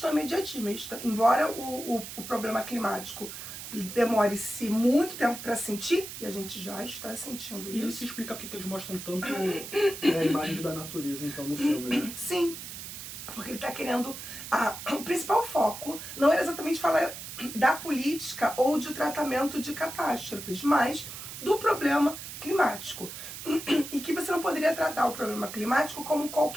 imediatista. Embora o problema climático demore-se muito tempo para sentir, e a gente já está sentindo E isso. isso explica porque que eles mostram tanto a imagem da natureza, então, no filme, né? Sim, porque ele está querendo... o principal foco não era exatamente falar da política ou de tratamento de catástrofes, mas do problema climático. E que você não poderia tratar o problema climático como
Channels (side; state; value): right; noise; hiss, 10 dB below the sound